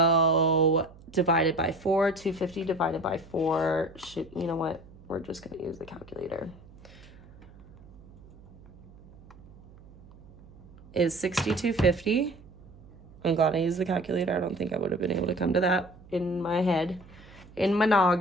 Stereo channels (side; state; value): right; noise; hum, 22 dB below the sound